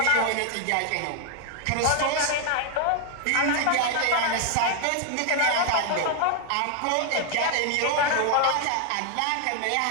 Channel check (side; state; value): both; different; correlation 0.00